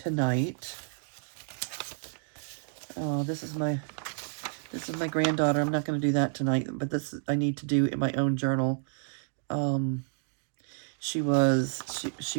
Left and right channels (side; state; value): left; silent; 58 dB below the other